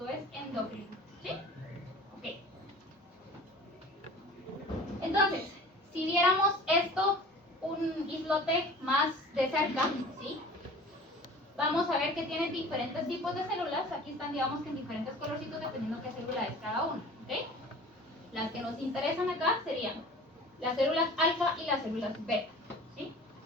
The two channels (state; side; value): normal; both; correlation 0.42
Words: es endocrino, ¿sí? Ok. Entonces, si viéramos esto, un islote más de cerca, ¿sí? Vamos a ver que tiene diferentes tipos de células. Aquí están, digamos, que en diferentes colorcitos dependiendo qué célula es cada una, ¿ok? Las que nos interesan acá serían las células alfa y las células beta, ¿sí?